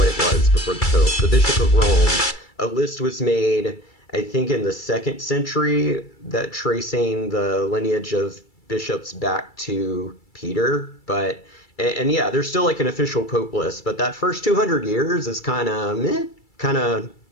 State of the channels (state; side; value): late; right; 2.3 ms